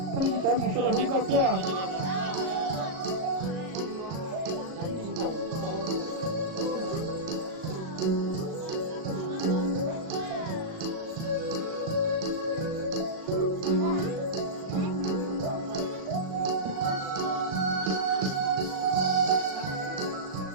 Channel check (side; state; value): left; late; 37 ms